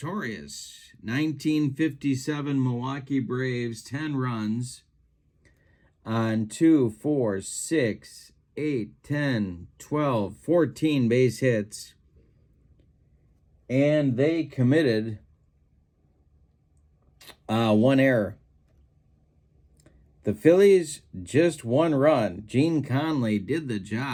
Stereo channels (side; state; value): both; identical; correlation 1.00